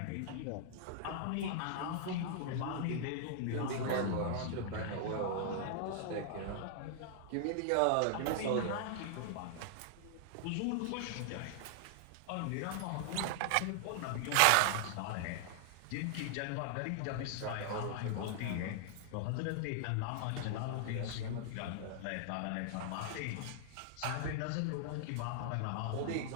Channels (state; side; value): different; both; correlation -0.01